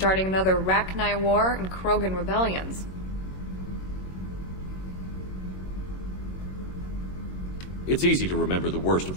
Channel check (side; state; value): right; late; 21 ms